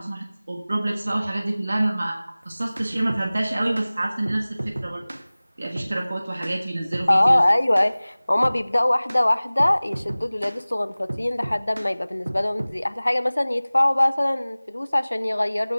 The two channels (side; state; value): both; inverted; correlation -0.99